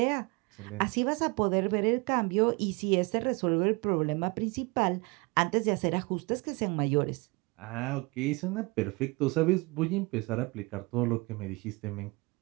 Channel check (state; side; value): quieter; left; 26.6 dB